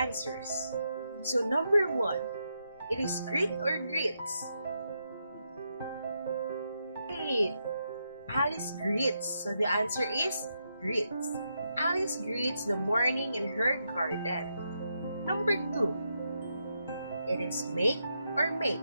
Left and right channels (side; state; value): both; inverted; correlation -0.82